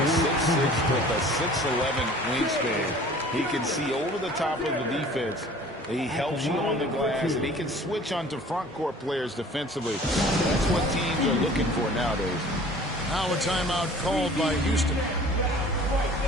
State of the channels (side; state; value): both; normal; correlation 0.48